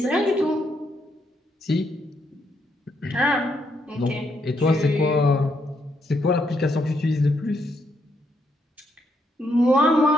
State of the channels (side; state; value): both; normal; correlation 0.77